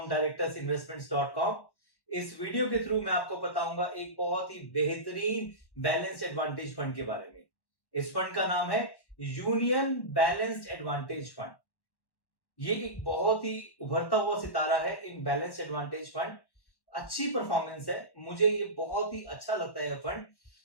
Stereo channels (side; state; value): right; late; 1.1 ms